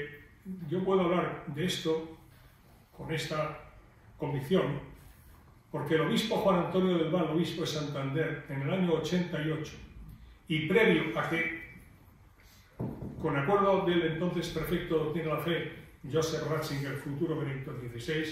yo puedo hablar de esto con esta convicción, porque el obispo Juan Antonio del Val, obispo de Santander, en el año 88, y previo a que, con acuerdo del entonces prefecto de Doctrina de la Fe, Joseph Ratzinger, futuro Benedicto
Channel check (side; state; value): both; identical; correlation 1.00